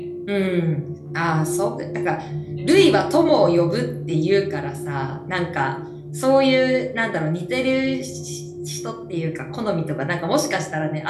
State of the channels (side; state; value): both; identical; correlation 1.00